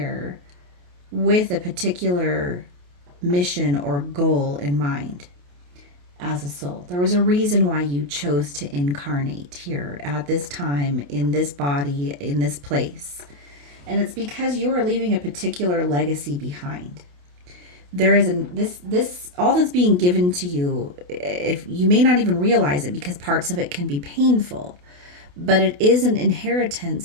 with a particular mission or goal in mind as a soul. There was a reason why you chose to incarnate here at this time, in this body, in this place. And it's because you are leaving a particular legacy behind. There is this all that's being given to you, if you may not even realize it, because parts of it can be painful, but it is an inheritance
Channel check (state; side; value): late; left; 28 ms